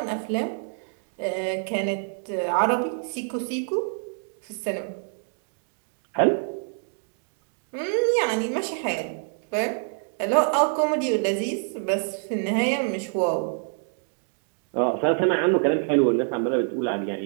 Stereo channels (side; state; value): left; silent; 61 dB below the other